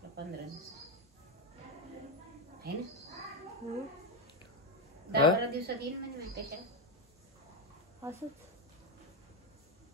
15 दिवस आहे ना. 10-12 दिवसात येईल म्हणजे माहिती कशाला. असंच.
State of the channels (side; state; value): both; normal; correlation 0.08